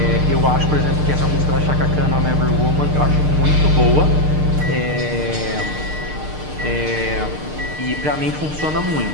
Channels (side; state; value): left; late; 6.6 ms